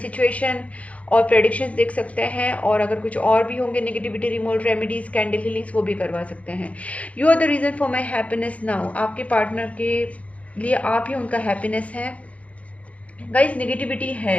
और प्रेडिक्शंस देख सकते हैं, और अगर कुछ और भी होंगे negativity removal remedies, candle healings, वो भी करवा सकते हैं। You are the reason for my happiness now. आपके पार्टनर के लिए आप ही उनका हैप्पीनेस है। गाइस नेगेटिविटी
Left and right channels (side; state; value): right; late; 0.065 ms